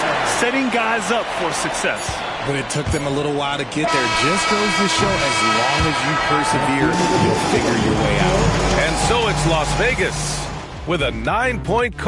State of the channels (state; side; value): identical; both; correlation 1.00